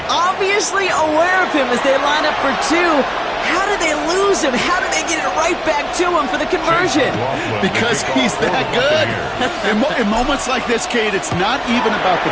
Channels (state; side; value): identical; both; correlation 1.00